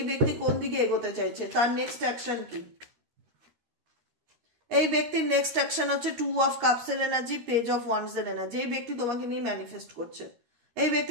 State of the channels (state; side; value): late; left; 12 ms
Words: ব্যক্তি কোন দিকে এগোতে চাইছে, তার নেক্সট অ্যাকশন কি? এই ব্যক্তির নেক্সট অ্যাকশন হচ্ছে 2 of Cups এর এনার্জি, পেজ অফ ওয়ান্ডস এর এনার্জি। এই ব্যক্তি তোমাকে নিয়ে ম্যানিফেস্ট করছে, এই